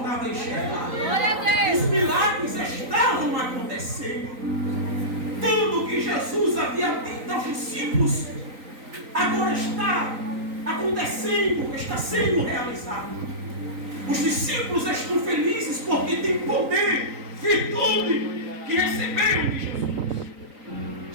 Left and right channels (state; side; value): late; left; 3.9 ms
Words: a enxergar. Os milagres estavam acontecendo. Tudo que Jesus havia dito aos discípulos agora está acontecendo, está sendo realizado. Os discípulos estão felizes porque têm poder, virtude que receberam de Jesus.